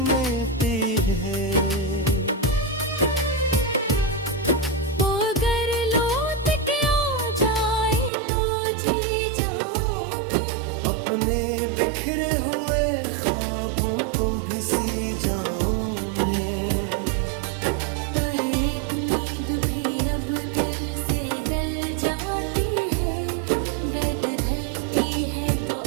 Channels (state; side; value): drops out; left; at 8.1 s